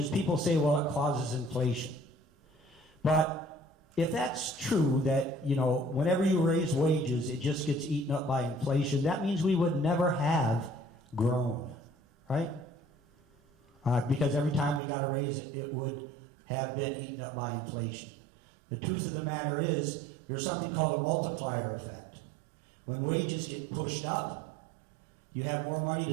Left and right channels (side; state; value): left; drops out; at 14.8 s